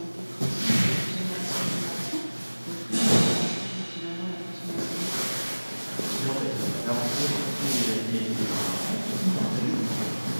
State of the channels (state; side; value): inverted; both; correlation -1.00